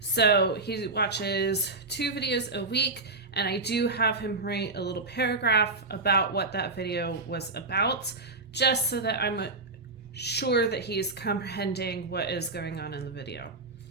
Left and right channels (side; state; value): left; quieter; 3.4 dB